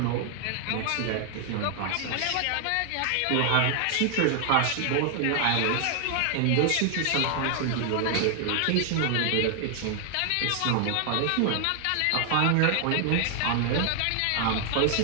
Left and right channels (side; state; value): both; different; correlation 0.00